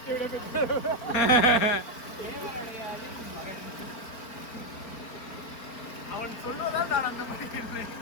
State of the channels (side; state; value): right; late; 4.4 ms